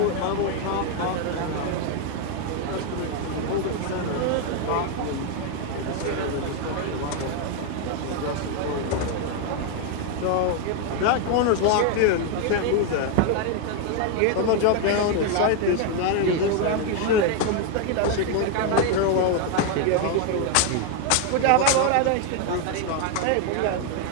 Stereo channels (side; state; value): both; different; correlation 0.01